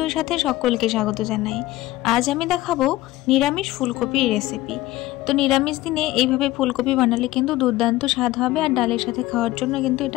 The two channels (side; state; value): right; quieter; 17.2 dB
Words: साथे सकलके स्वागत जानाई। आज आमी देखाबो निरामिष फुलकपिर रेसिपि। तो निरामिष दिने এইভাবে ফুলকপি বানালে কিন্তু দুর্দান্ত স্বাদ হবে আর ডালের সাথে খাওয়ার জন্য কিন্তু এটা